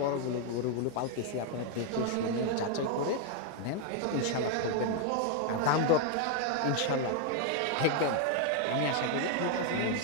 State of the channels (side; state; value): both; different; correlation 0.01